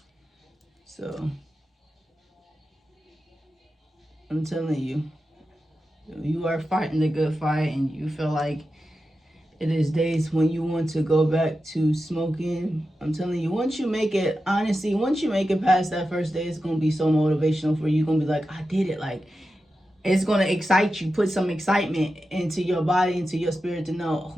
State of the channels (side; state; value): both; normal; correlation 0.91